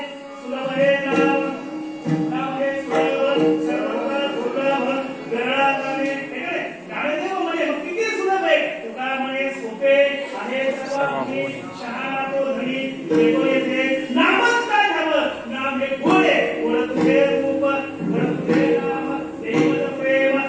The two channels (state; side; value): identical; both; correlation 1.00